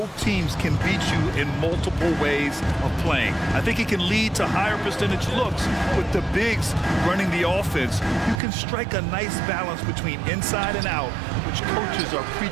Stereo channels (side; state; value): left; drops out; at 8.4 s